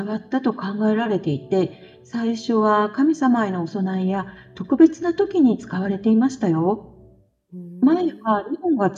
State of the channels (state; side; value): identical; both; correlation 1.00